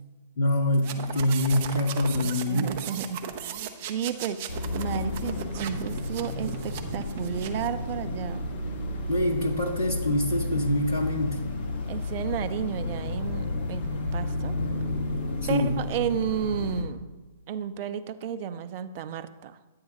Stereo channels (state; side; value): inverted; both; correlation -0.61